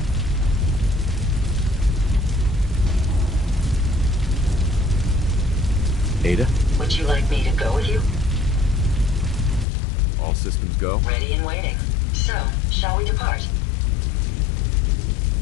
Ada? Would you like me to go with you? All systems go? Ready and waiting. So, shall we depart?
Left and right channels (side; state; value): right; drops out; at 9.7 s